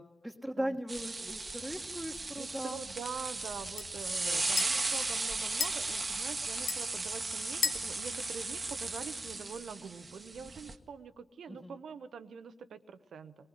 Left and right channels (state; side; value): normal; both; correlation 0.89